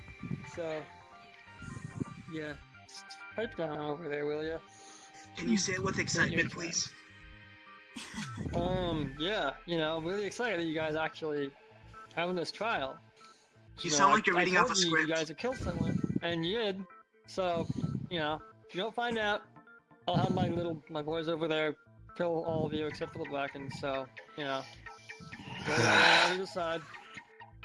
So, yeah, just pipe down over there, will ya? Can you say it with excitement, please? Yeah, I'm really excited that you guys actually having this trial. You sound like you're I reading off told a you script. you guys have killed someone, and you did. So, if you don't find out, I'll have my boys over there kill all of you except for the Blackens. So, go on either side.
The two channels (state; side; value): identical; both; correlation 1.00